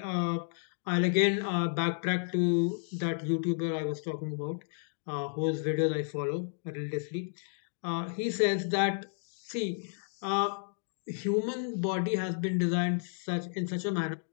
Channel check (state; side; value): silent; right; digital silence